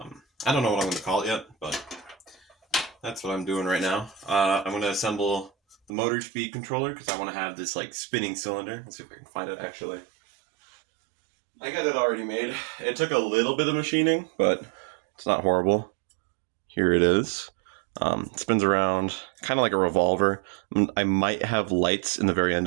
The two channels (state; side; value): drops out; left; at 5.9 s